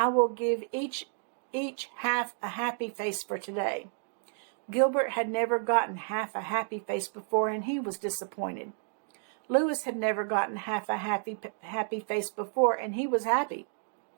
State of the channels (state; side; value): silent; left; 57 dB below the other